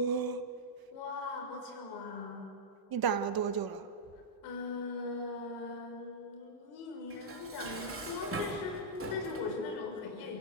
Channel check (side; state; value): both; normal; correlation -0.10